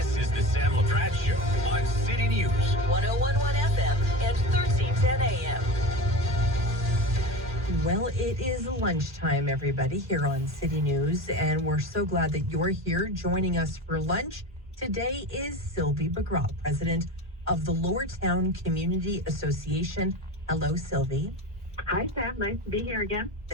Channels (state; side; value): normal; both; correlation 0.28